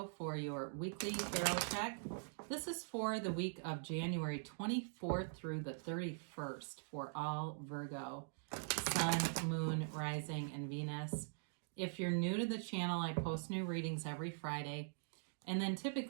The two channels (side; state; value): left; silent; digital silence